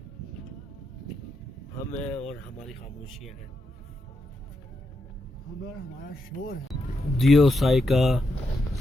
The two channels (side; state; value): both; normal; correlation 0.84